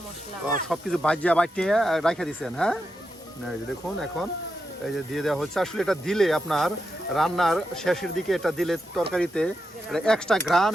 মশলা। সবকিছু ভাজিয়া বাটিয়ে রাখা দিচ্ছেন, হ্যাঁ? না, এই যে দেখুন এখন এই যে দিয়ে দেওয়া হচ্ছে। আসলে এটা দিলে আপনার রান্নার শেষের দিকে এটা দিলে তরকারিতে এক্সট্রা ঘ্রাণ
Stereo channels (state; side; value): normal; both; correlation 0.86